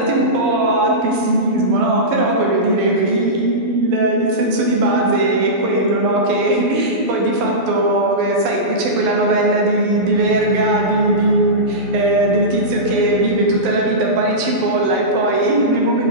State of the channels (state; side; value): late; left; 12 ms